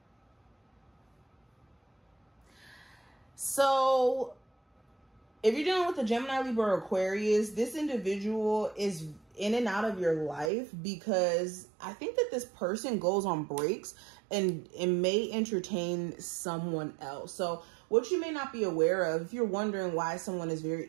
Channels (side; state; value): left; drops out; at 10.5 s